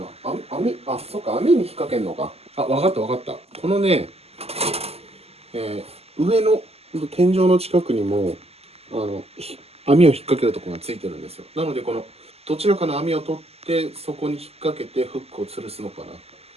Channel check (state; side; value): late; left; 0.29 ms